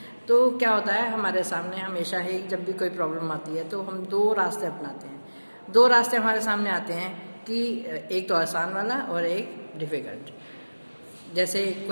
तो क्या होता है हमारे सामने हमेशा ही जब भी कोई प्रॉब्लम आती है तो हम दो रास्ते अपनाते हैं। दो रास्ते हमारे सामने आते हैं कि एक तो आसान वाला और एक डिफ़िकल्ट। जैसे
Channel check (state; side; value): inverted; both; correlation -1.00